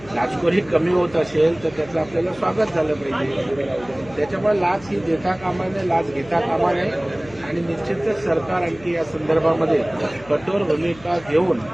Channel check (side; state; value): left; noise; hum, 21 dB below the sound